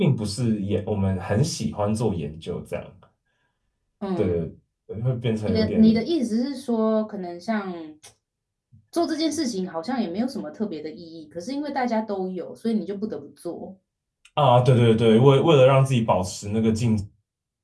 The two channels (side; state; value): both; identical; correlation 1.00